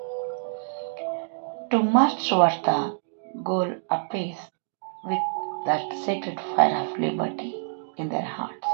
to march towards the goal apace with that sacred fire of liberty in their hearts.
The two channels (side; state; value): left; silent; digital silence